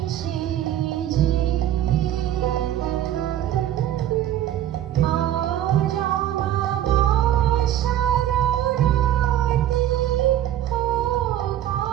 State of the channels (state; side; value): quieter; left; 12.0 dB